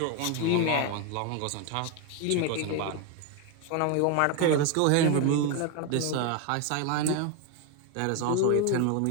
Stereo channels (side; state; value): both; different; correlation 0.01